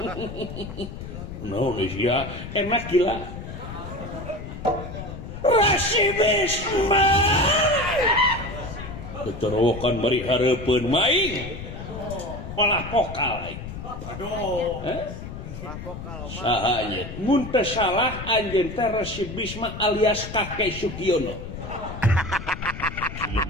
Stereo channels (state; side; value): noise; left; rumble, 10 dB below the sound